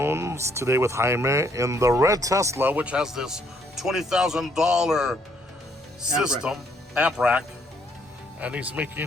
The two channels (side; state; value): both; normal; correlation 0.68